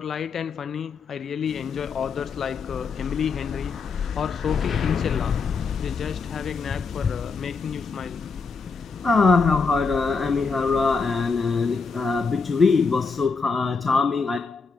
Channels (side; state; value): right; quieter; 4.8 dB